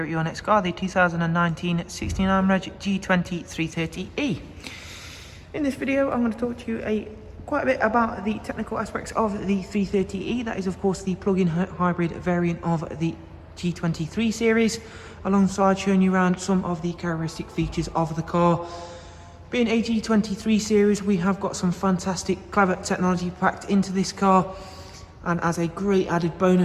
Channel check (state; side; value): identical; both; correlation 1.00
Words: at your next car, the 2019 69 Reg G20 330e. In this video I'm going to talk to you quite a bit about the technical aspects of the 330e. That is of course the plug-in hybrid variant of the G23 series, alongside showing you around some of the characteristic features of the car. Being a G23 series, we have got some fantastic clever technology packed into this car. And as a great added